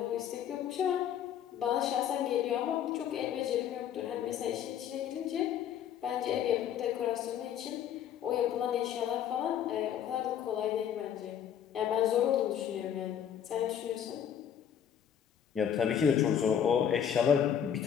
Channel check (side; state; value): right; quieter; 9.1 dB